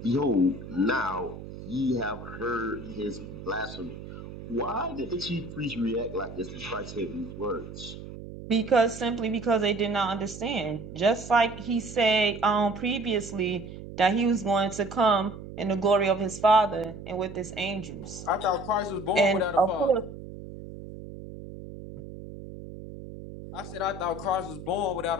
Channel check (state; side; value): noise; right; hum, 12 dB below the sound